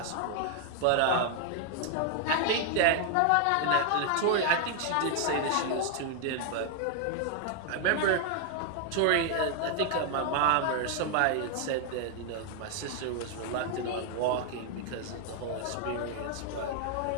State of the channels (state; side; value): different; both; correlation 0.00